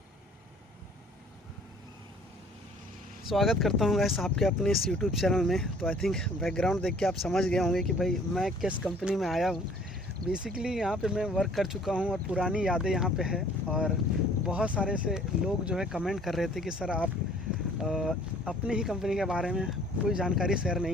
स्वागत करता हूँ गाइस आपके अपने इस यूट्यूब चैनल में। तो आई थिंक बैकग्राउंड देख के आप समझ गए होंगे कि भाई मैं किस कंपनी में आया हूँ। बेसिकली यहाँ पे मैं वर्क कर चुका हूँ और पुरानी यादें यहाँ पे है। और बहुत सारे से लोग जो है कमेंट कर रहे थे कि सर आप अपनी ही कंपनी के बारे में कोई जानकारी शेयर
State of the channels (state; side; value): normal; both; correlation 0.55